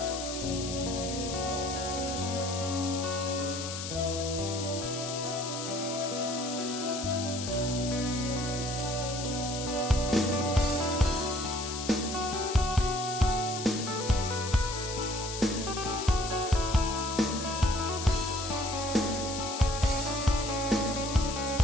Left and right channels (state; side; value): noise; left; hiss, 6 dB below the sound